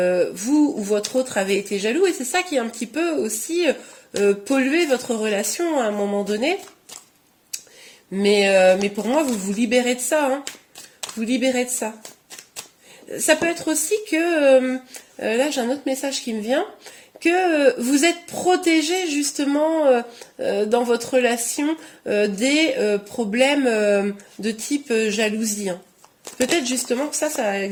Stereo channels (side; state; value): both; identical; correlation 1.00